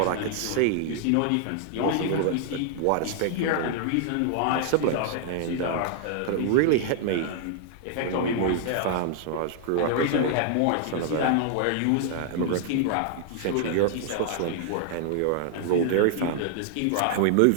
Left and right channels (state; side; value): different; both; correlation 0.00